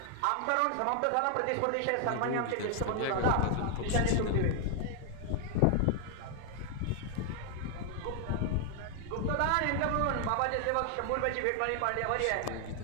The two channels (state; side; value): different; both; correlation 0.00